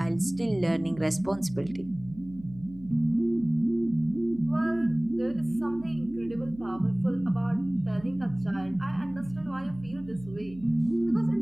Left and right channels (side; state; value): right; noise; hum, 19 dB below the sound